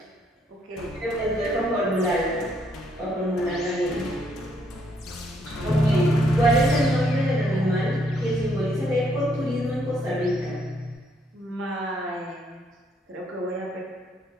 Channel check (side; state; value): both; normal; correlation 0.71